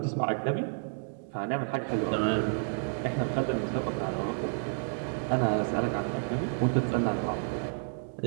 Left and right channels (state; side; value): silent; left; digital silence